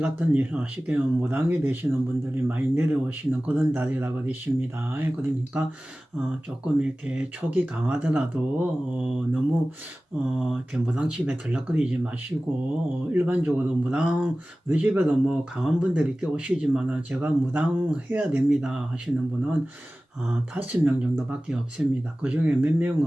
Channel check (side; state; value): both; normal; correlation 0.97